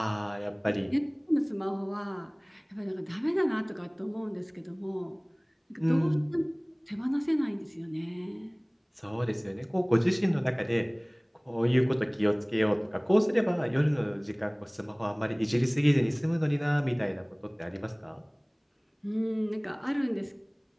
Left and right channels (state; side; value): identical; both; correlation 1.00